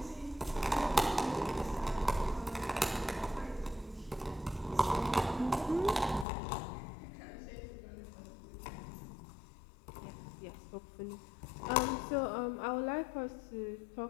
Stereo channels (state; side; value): drops out; right; at 6.2 s